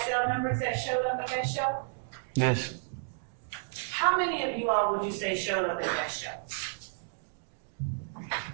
members that showed up at that show? Yes. How many of you all would you say showed up at that show?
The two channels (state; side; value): silent; left; digital silence